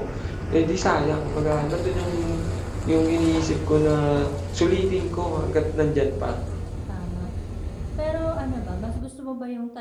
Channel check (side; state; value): both; identical; correlation 1.00